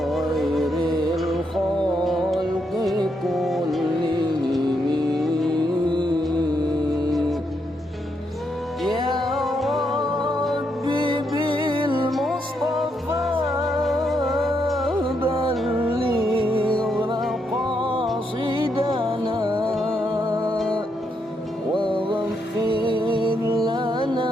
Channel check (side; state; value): both; normal; correlation 0.79